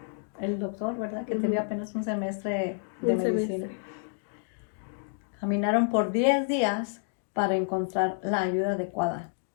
el doctor, ¿verdad? Que tenía apenas un semestre de medicina. Caminaron por 10 días para encontrar la ayuda adecuada.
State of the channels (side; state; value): right; silent; digital silence